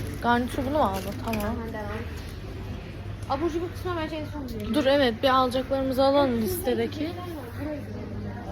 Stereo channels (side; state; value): both; identical; correlation 1.00